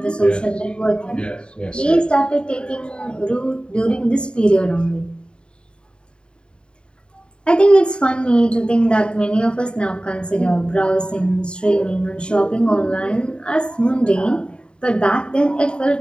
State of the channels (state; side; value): late; right; 0.052 ms